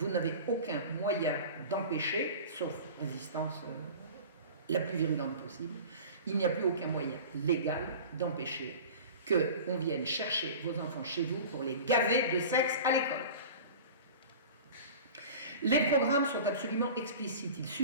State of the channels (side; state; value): both; inverted; correlation -0.37